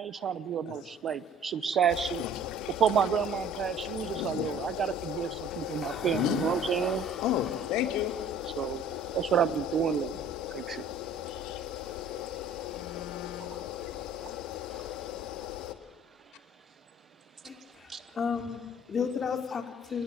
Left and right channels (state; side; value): normal; both; correlation 0.51